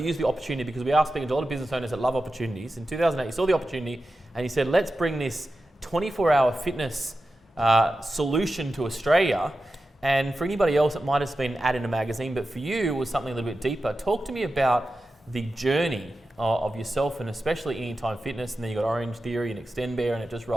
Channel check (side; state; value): both; normal; correlation 0.92